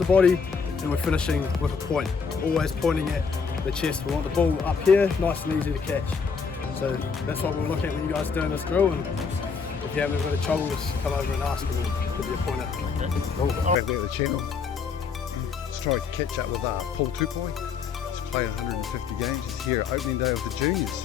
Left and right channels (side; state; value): right; quieter; 5.6 dB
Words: body and we're finishing with a point. Always pointing at the chest. We want the ball up here, nice and easy to catch. So that's what we'll look at when you guys are doing this drill, and if you have a bit of trouble, just come over and ask and we'll give you a pointer. Back there at the channel. Let's try to catch up with Paul Tupoi. He's played 150 games. He's here at opening day of the